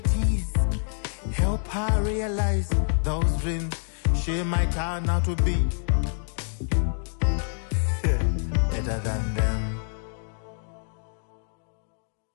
Help her realize those dreams she might turn out to be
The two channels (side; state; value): right; silent; digital silence